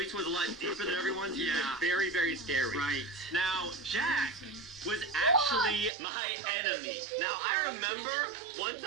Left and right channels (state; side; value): drops out; left; at 5.9 s